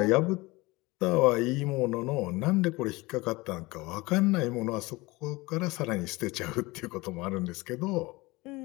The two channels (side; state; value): right; quieter; 22.3 dB